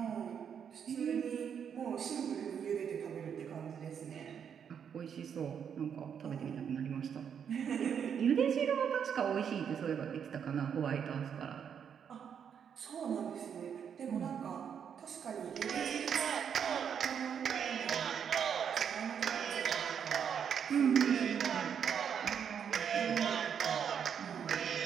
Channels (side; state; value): left; quieter; 7.8 dB